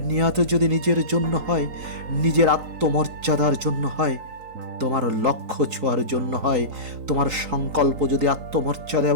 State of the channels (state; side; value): late; left; 3.8 ms